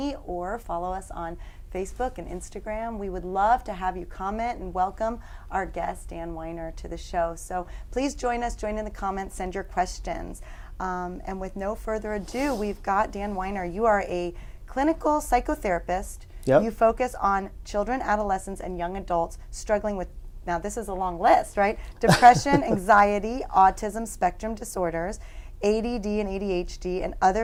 or follow us on Facebook and Instagram. We would love to have you comment and welcome our guest, Dan Weiner, to the show. So please join us, join in the comments, send your questions. And with no further ado, we've got Dan Weiner. You are a clinical psychotherapist. Yep. You focus on children, adolescents, and young adults struggling with, now this is a long list, right? Depression, anxiety, autism spectrum disorders, ADD and ADHD, and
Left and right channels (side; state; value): both; identical; correlation 1.00